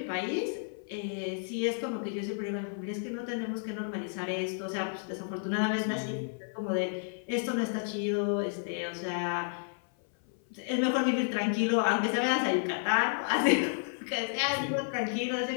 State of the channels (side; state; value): right; silent; 57 dB below the other